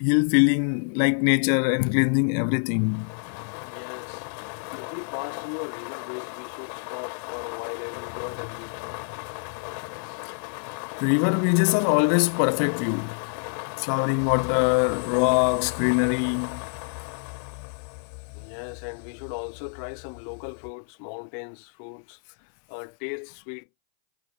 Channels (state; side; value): silent; right; 61 dB below the other